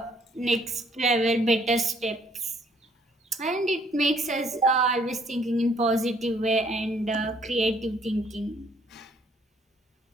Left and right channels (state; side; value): normal; both; correlation 0.64